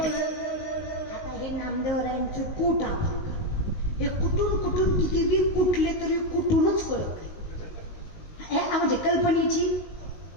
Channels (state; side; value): late; right; 19 ms